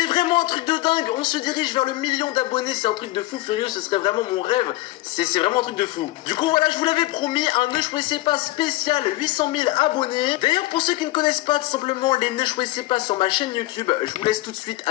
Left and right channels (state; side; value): quieter; right; 18.4 dB